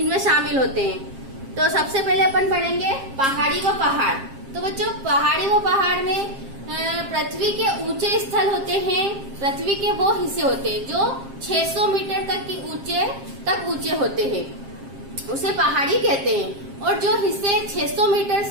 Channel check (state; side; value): late; left; 7.5 ms